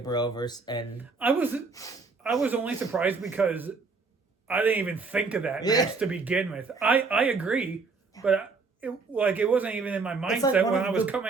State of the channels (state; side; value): quieter; left; 4.3 dB